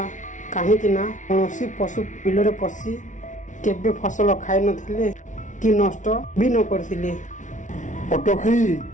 କାହିଁକି ନା କୌଣସି ପଶୁ ବିଲରେ ପଶି କେବେ ଫସଲ ଖାଇନଥିଲେ କି ନଷ୍ଟ ବି ନ କରିଥିଲେ।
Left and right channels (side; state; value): right; late; 0.37 ms